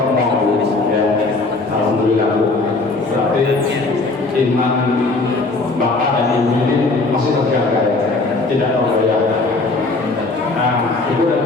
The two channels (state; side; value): quieter; right; 3.4 dB